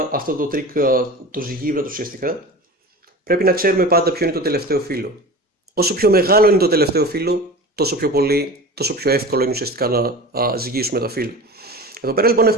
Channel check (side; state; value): both; normal; correlation 0.34